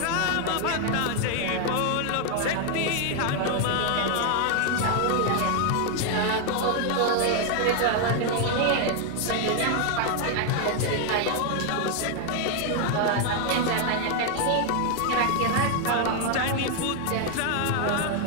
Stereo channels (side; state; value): both; different; correlation 0.01